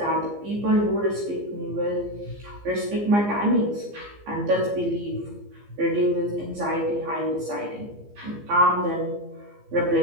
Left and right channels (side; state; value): left; late; 15 ms